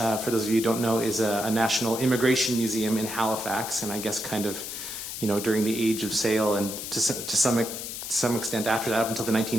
those of you who don't know, is a national immigration museum in Halifax, and I guess kind of, during the age of sail, and to some extent after that, up until the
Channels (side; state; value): left; noise; hiss, 7 dB below the sound